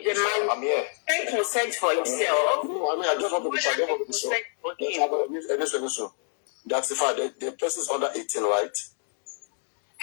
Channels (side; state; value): right; silent; 60 dB below the other